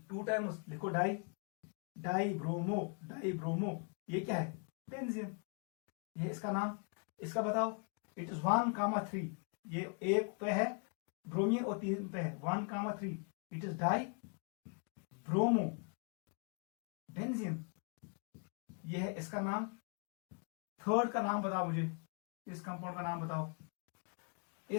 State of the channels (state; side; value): quieter; right; 38.6 dB